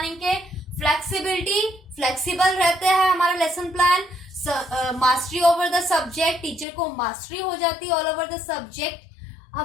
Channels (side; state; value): right; drops out; at 6.7 s